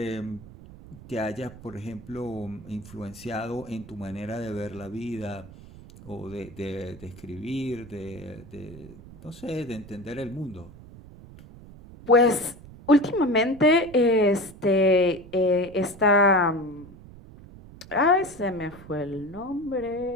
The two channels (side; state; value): right; noise; rumble, 18 dB below the sound